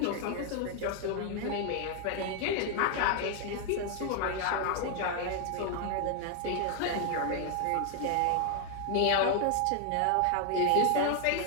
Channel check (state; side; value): different; both; correlation 0.00